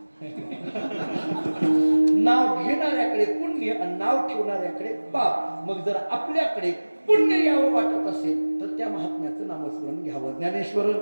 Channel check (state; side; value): inverted; both; correlation -1.00